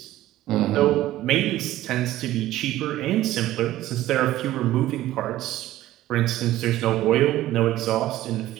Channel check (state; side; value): quieter; left; 14.8 dB